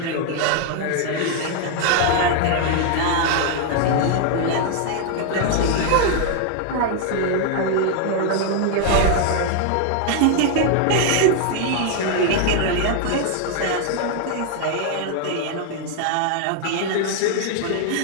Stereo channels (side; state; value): both; different; correlation 0.00